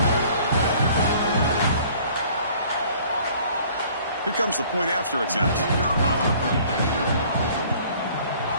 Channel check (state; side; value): inverted; both; correlation -0.54